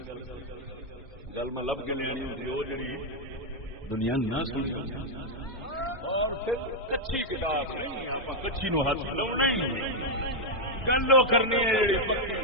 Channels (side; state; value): both; normal; correlation 0.00